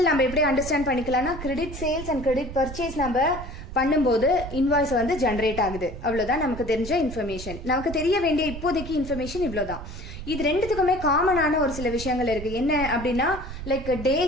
நம்ம எப்படி அண்டர்ஸ்டாண்ட் பண்ணிக்கலாம்னா, credit sales and credit purchase நம்ம பண்ணும்போது இன்வாய்ஸ் வந்து ஜென்ரேட் ஆகுது, அவ்வளவுதான் நமக்கு தெரிஞ்ச இன்ஃபர்மேஷன். நமக்கு தெரிய வேண்டிய இப்போதைக்கு இன்ஃபர்மேஷன் இவ்வளவுதான். இது ரெண்டுத்துக்குமே காமனான ஒரு சில விஷயங்கள் இருக்கு. என்ன அப்படின்னா, லைக்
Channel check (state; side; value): noise; right; rumble, 10 dB below the sound